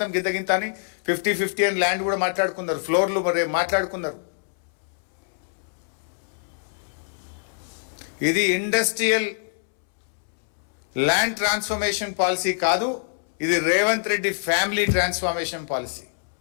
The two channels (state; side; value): silent; right; 62 dB below the other